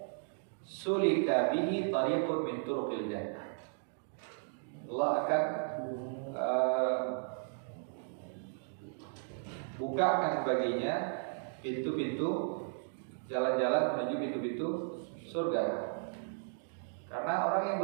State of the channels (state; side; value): silent; left; digital silence